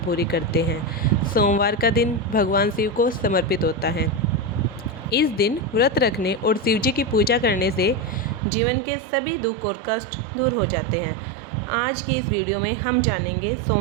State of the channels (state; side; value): drops out; left; at 8.4 s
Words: करते हैं। सोमवार का दिन भगवान शिव को समर्पित होता है। इस दिन व्रत रखने और शिवजी की पूजा करने से जीवन के सभी दुख और कष्ट दूर हो जाते हैं। आज की इस वीडियो में हम जानेंगे